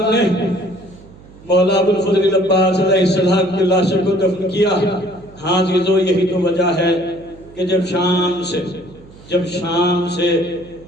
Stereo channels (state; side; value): noise; right; hum, 22 dB below the sound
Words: نے مولا ابو الفضل العباس علیہ السلام کے لاشے کو دفن کیا۔ ہاں عزیزو، یہی تو وجہ ہے کہ جب شام سے